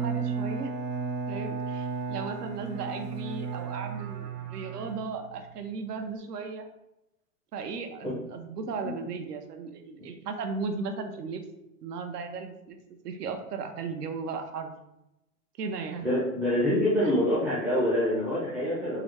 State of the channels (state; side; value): normal; both; correlation 0.28